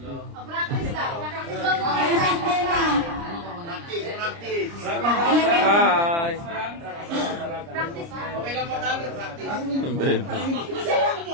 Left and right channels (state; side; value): late; left; 30 ms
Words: Practice lang. Practice lang muna. Practice. Hi! Practice lang. Okay lang mo tayo, practice.